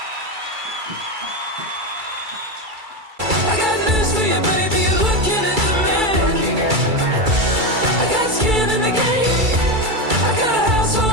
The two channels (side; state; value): left; late; 2.3 ms